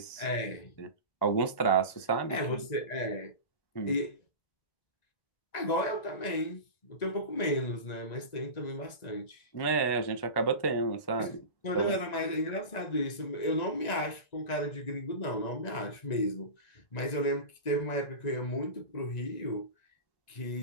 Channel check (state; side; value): late; right; 1.9 ms